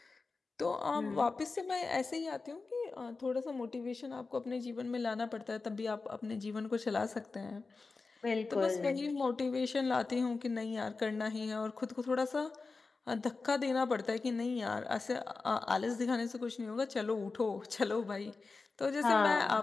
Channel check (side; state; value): right; quieter; 4.0 dB